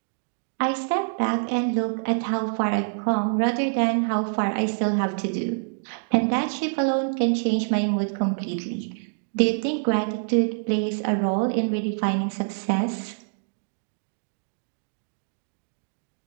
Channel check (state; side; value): silent; left; digital silence